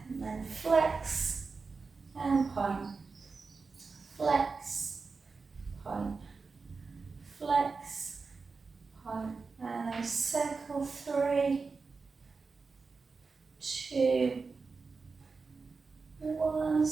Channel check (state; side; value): quieter; left; 4.5 dB